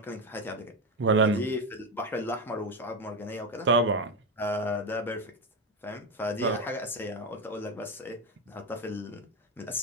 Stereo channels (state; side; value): normal; both; correlation 0.13